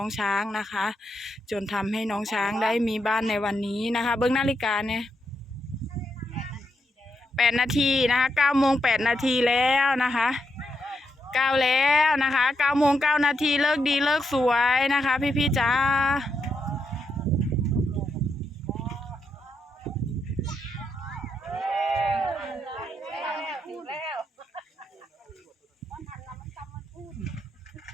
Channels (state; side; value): normal; both; correlation 0.81